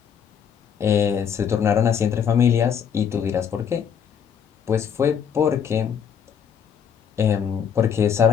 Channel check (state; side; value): quieter; right; 7.8 dB